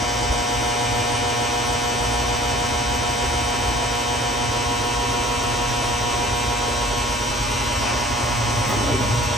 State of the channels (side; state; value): both; normal; correlation 0.50